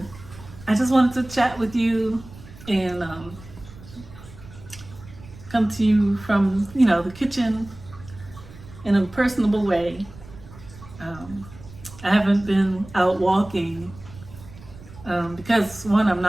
I just wanted to chat with you and come to you from, you know, the kitchen in a personable way. I haven't been out walking because, one, I'm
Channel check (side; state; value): right; noise; rumble, 18 dB below the sound